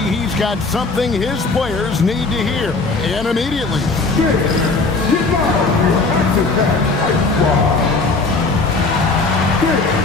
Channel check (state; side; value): quieter; right; 3.8 dB